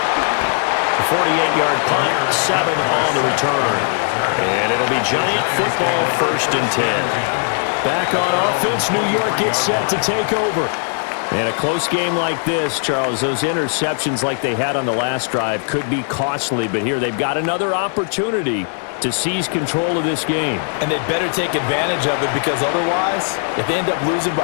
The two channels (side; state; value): right; silent; 60 dB below the other